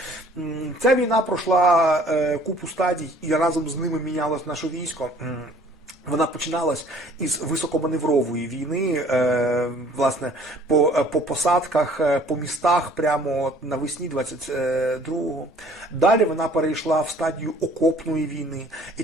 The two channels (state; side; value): normal; both; correlation 0.54